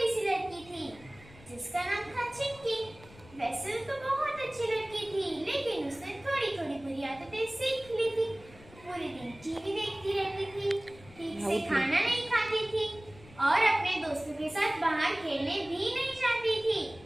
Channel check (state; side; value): noise; left; rumble, 21 dB below the sound